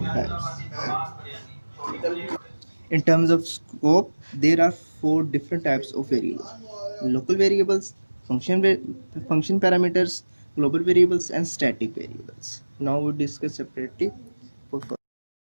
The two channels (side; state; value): both; inverted; correlation -1.00